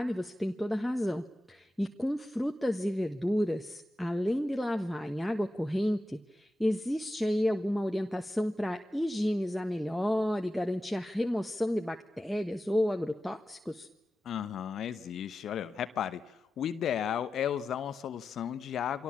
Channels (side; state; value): both; normal; correlation 0.92